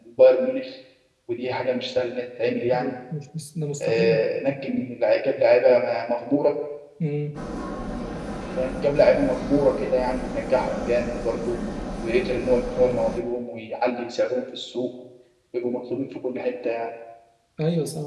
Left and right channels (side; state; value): both; identical; correlation 1.00